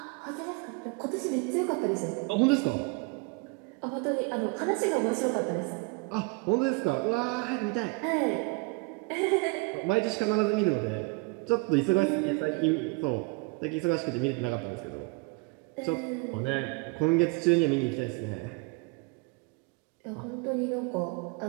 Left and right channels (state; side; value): quieter; left; 28.9 dB